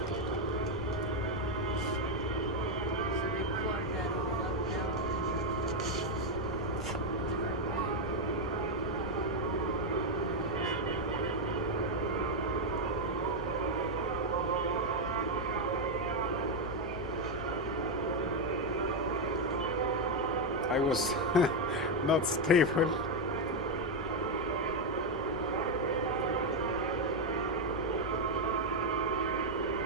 I was not stable.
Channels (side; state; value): both; normal; correlation 0.03